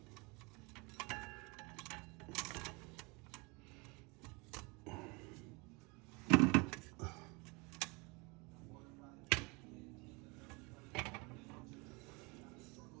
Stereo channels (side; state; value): left; quieter; 28.2 dB